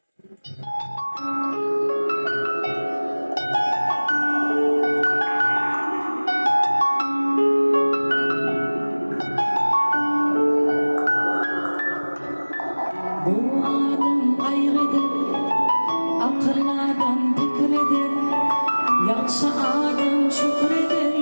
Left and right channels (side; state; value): both; inverted; correlation -1.00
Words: Bu adam kaygıdır, akıllı adam fikridir, yaxşı adam şükreder,